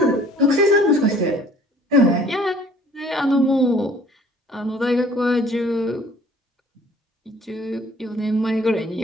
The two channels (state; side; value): normal; both; correlation 0.54